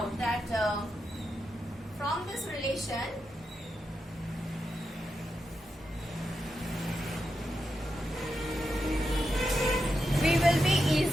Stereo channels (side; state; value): both; normal; correlation 0.87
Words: that from this relation, we will be